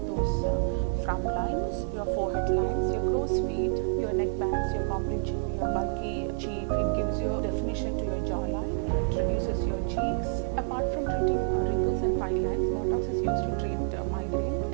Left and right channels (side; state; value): left; silent; digital silence